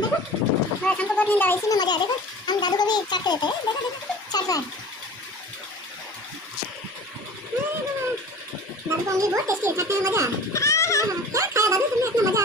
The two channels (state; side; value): normal; both; correlation 0.40